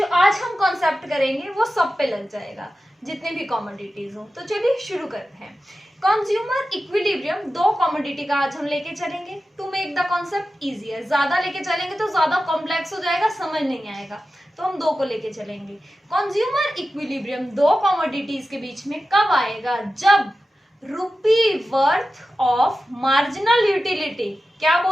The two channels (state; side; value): normal; both; correlation 0.93